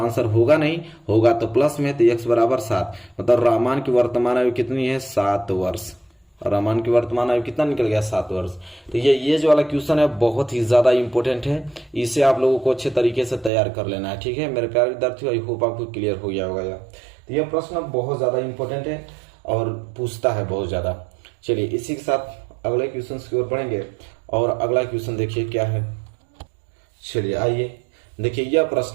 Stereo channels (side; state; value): left; drops out; at 13.5 s